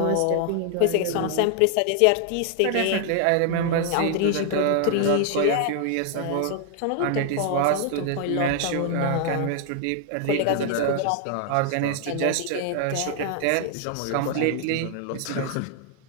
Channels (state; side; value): different; both; correlation 0.00